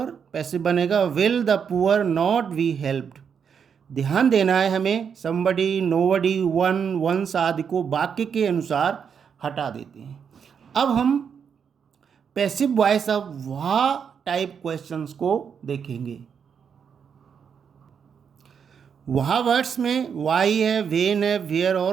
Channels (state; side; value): quieter; left; 7.0 dB